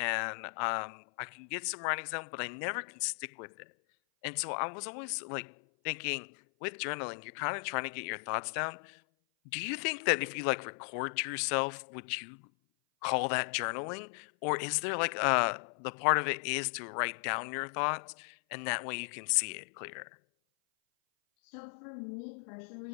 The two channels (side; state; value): right; silent; 54 dB below the other